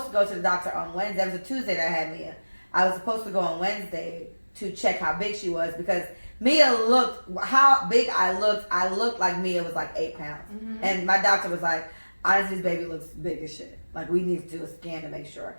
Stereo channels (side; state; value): both; inverted; correlation -1.00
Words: to go to the doctor on Wednesday. That was a Tuesday that I had Mia. I was supposed to go on Wednesday to check how big she was because Mia looked, how big I looked like Mia was like 8 pounds. Mm-hmm. And my doctor was like, honestly, this baby looks big as shit. Like, we need to do a scan to make sure.